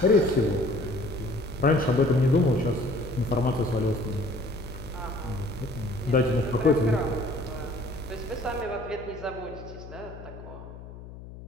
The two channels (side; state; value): left; noise; hum, 15 dB below the sound